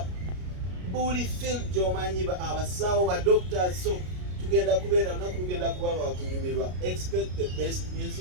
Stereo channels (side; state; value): left; late; 33 ms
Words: buli field gy'omanyi, abasawo, ba doctors. So tugenda kubeera lunaku lugenda kuba lwakunyumirwa. Expect the best